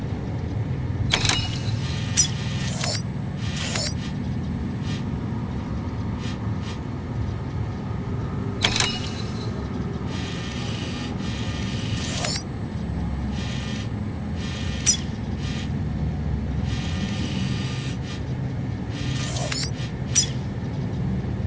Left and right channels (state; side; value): identical; both; correlation 1.00